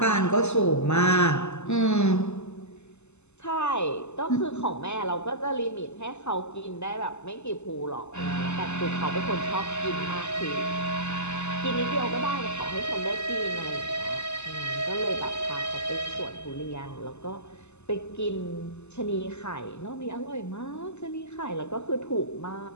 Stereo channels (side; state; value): right; late; 0.82 ms